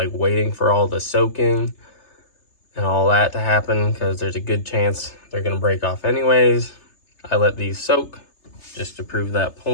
waiting for all the soaking and all that to happen, because there's a good chance they're going to break off anyways. I let these soak just to prove that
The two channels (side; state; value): right; late; 3.3 ms